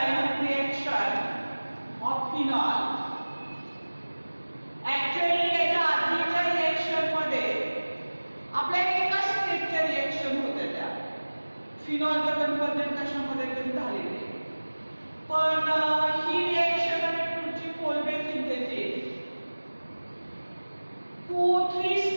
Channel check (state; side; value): inverted; both; correlation -1.00